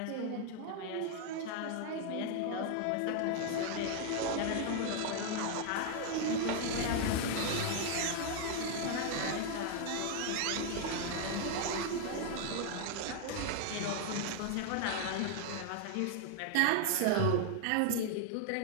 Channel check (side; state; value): both; different; correlation 0.00